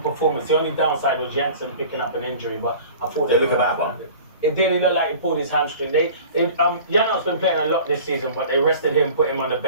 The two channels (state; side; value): inverted; both; correlation -0.43